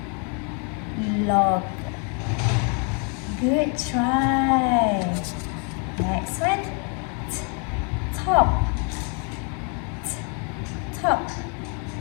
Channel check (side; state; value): right; quieter; 37.8 dB